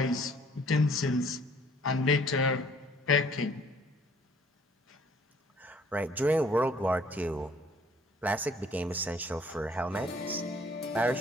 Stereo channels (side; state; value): both; normal; correlation 0.59